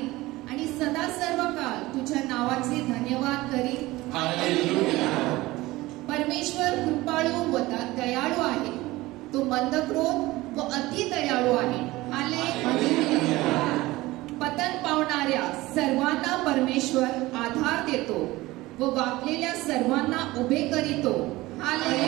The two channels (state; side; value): quieter; left; 19.1 dB